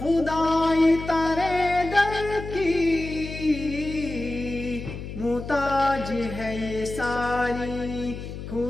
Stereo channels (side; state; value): left; noise; hum, 9 dB below the sound